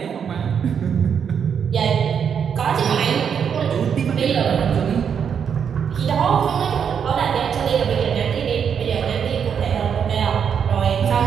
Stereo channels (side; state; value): left; quieter; 7.4 dB